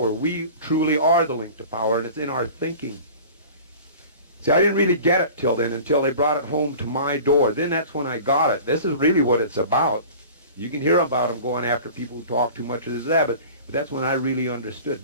We truly are the link to power, and it's in our thinking. See, I didn't really get it till then, until they brought it home to my door. Then that's when I got it. This is really what it's about. You can hear about them going after people who talk too much of this, that, but that's when I really understood.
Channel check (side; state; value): both; inverted; correlation -0.41